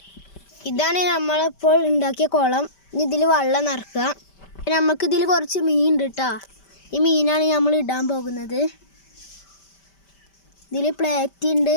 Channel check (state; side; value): late; right; 5.1 ms